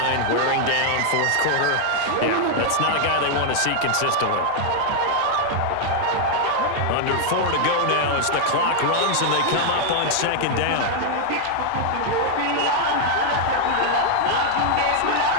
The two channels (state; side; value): different; both; correlation 0.00